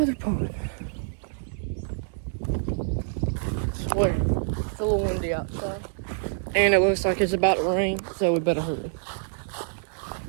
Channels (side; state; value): left; silent; 60 dB below the other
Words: other pond. I swear, it's a little windy outside. And it looks like it's about to rain, so we better hurry.